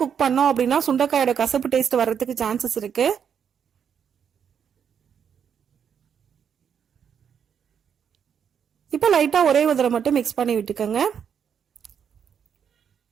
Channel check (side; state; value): left; quieter; 7.8 dB